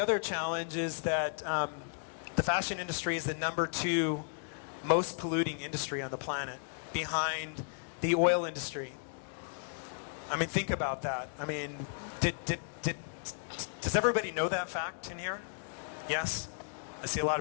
challenge is that the fashion industry is the #2 most polluting industry on the planet, behind the oil industry. I mean, think about that. I mean, does everybody know that fact in here? Yes? I see a lot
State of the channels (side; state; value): right; silent; digital silence